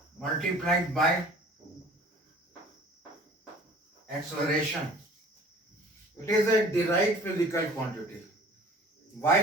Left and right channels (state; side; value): normal; both; correlation 0.49